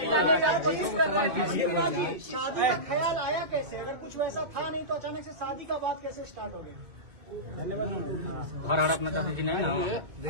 शादी का ख्याल आया कैसे? अगर कुछ वैसा था नहीं तो अचानक से शादी का बात कैसे स्टार्ट हो गया? हर अपना चाहती थी ना।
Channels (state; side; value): late; left; 2.2 ms